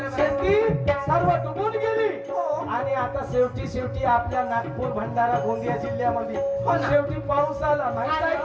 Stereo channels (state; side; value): identical; both; correlation 1.00